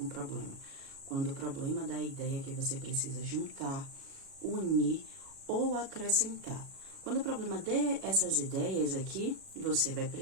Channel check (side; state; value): left; late; 37 ms